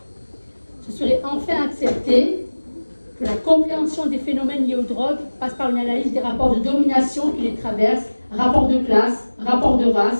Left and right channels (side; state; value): both; inverted; correlation -1.00